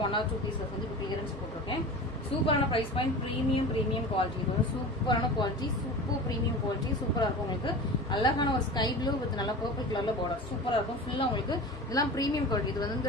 1 or 2 பீசஸ் வந்து இப்போ கிளியரன்ஸ் போட்டிருக்கேன். சூப்பரான ப்ரைஸ் பாயிண்ட், ப்ரீமியம் குவாலிட்டி. இது வந்து சூப்பரான குவாலிட்டி, சூப்பர் ப்ரீமியம் குவாலிட்டி. சூப்பராக இருக்கும். உங்களுக்கு அழகான ஒரு ஸ்கை ப்ளூ வித் நல்லா பர்பிள் கலர்ல பார்டர் சூப்பராக இருக்கும். ஃபுல்லாக உங்களுக்கு இதெல்லாம் ப்ரீமியம் குவாலிட்டி. இது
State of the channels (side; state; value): both; normal; correlation 0.33